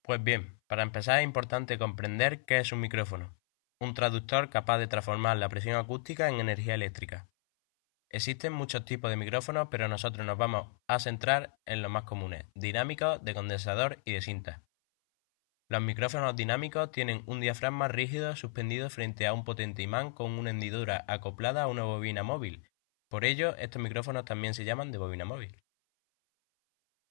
Pues bien, para empezar es importante comprender qué es un micrófono, un traductor capaz de transformar la presión acústica en energía eléctrica. Existen muchos tipos de micrófonos, pero nosotros nos vamos a centrar en los más comunes, dinámicos, de condensador y de cinta. Los micrófonos dinámicos tienen un diafragma rígido suspendido frente a un potente imán con una hendidura acoplada a una bobina móvil. Por ello, estos micrófonos también se llaman de bobina móvil.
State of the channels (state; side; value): silent; right; 55 dB below the other